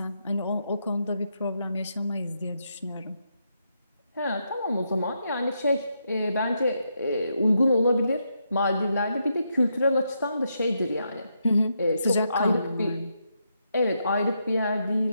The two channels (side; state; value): both; inverted; correlation -0.81